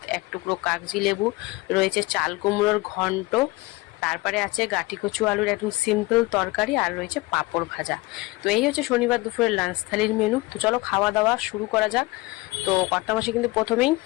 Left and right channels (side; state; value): right; quieter; 21.7 dB